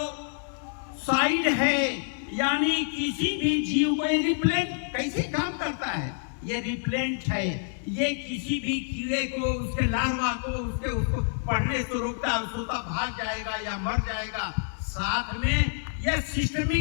है, यानी किसी भी जीव को रिप्लेंट कैसे काम करता है, ये रिप्लेंट है। ये किसी भी कीड़े को, उसके लार्वा को, उसको पढ़ने से रोकता है, उसका भाग जाएगा या मर जाएगा। साथ में ये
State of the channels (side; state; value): right; silent; digital silence